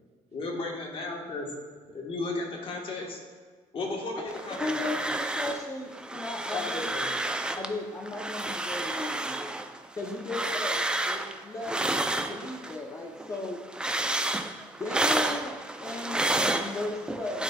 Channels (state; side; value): normal; both; correlation 0.60